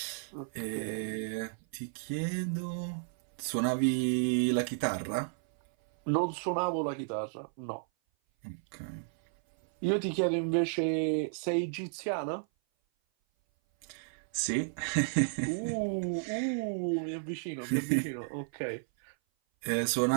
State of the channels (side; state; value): left; silent; 56 dB below the other